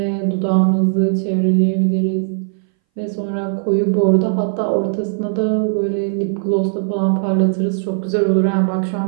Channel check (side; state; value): left; silent; 62 dB below the other